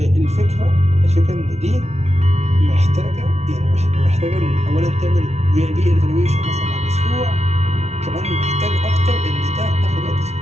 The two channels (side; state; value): left; late; 0.32 ms